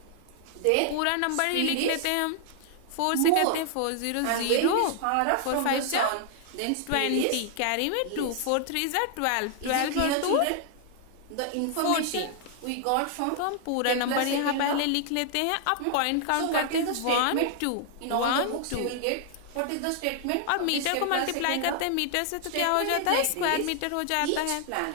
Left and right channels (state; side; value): different; both; correlation 0.00